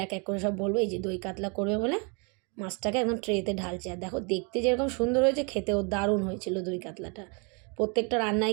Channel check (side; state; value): left; quieter; 33.7 dB